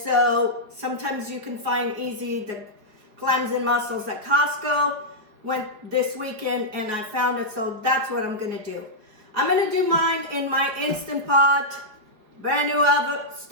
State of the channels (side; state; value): left; late; 4.8 ms